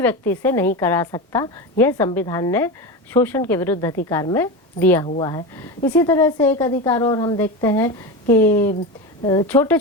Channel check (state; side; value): normal; both; correlation 0.21